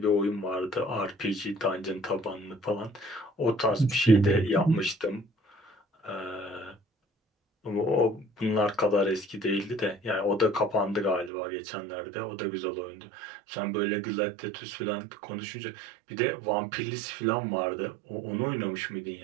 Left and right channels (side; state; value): left; drops out; at 11.3 s